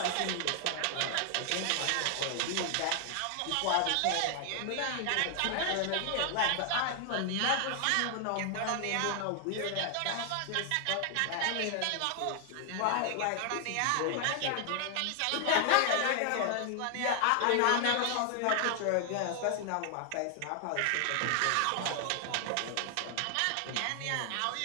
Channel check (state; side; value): different; both; correlation 0.00